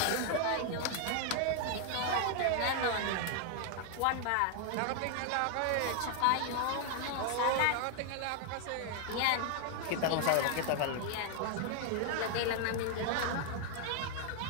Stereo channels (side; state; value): both; different; correlation 0.00